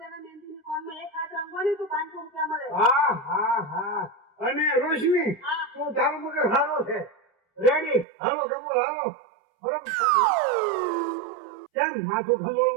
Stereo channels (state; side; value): drops out; left; at 8.1 s